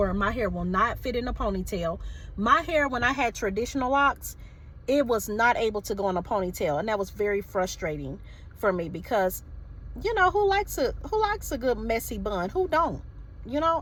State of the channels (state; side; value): identical; both; correlation 1.00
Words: my hair will not fit in a ponytail. My hair, when I had traditional locks, it was not able to go in a ponytail, and that was very frustrating for me, because you know, who likes a good messy bun? Who don't? You know,